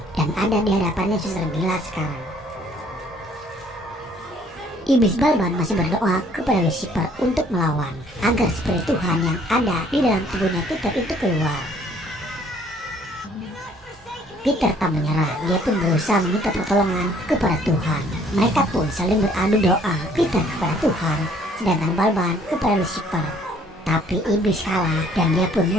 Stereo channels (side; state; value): both; normal; correlation 0.60